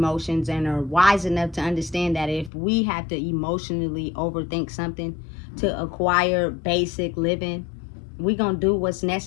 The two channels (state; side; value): drops out; right; at 2.5 s